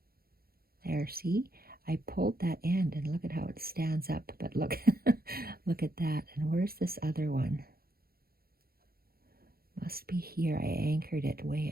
There, see? I pulled that end and look at how it stands up, but look, look at that. And where's this other one? Must be here. I anchored it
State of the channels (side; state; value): left; late; 0.44 ms